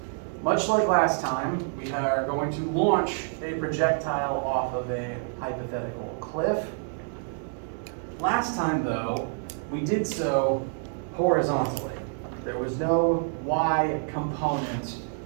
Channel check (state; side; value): silent; left; 60 dB below the other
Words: Much like last time, we are going to launch a projectile off of a hypothetical cliff. Last time, though, we did so horizontally. There was no y component